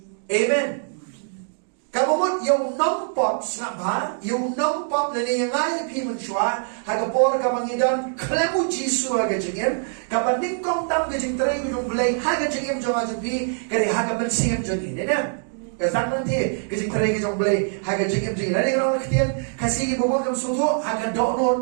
Amen. Kamu mut yung nampop snapa yung nampop na yang ay pi menchua hagapor kamangidan klemu jisu haga jingem kapaning kong tam gajing terai yung belai haga jingem jong ajupi kari haga men siam jongin na. Kazan nanti kajing terai kajong belai haga jingem jingin. Nadi kalau ketian kasih bobot kam susu haga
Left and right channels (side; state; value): left; silent; 63 dB below the other